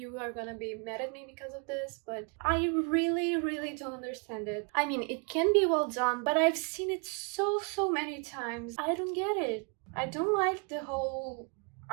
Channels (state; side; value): quieter; left; 35.4 dB